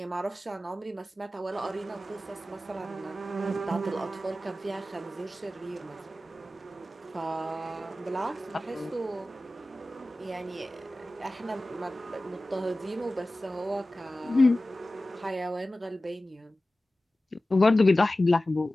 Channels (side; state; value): both; normal; correlation 0.96